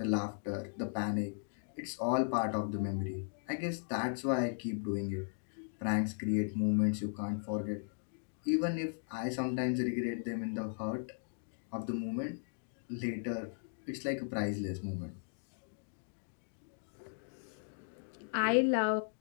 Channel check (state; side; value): silent; right; digital silence